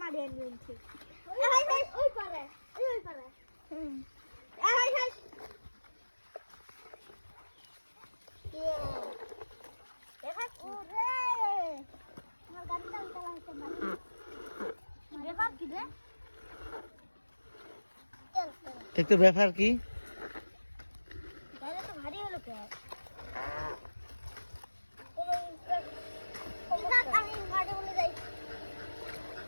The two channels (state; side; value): inverted; both; correlation -1.00